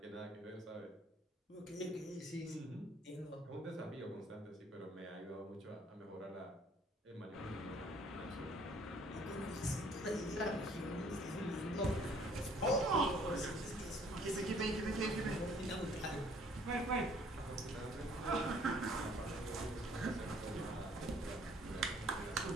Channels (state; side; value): normal; both; correlation 0.59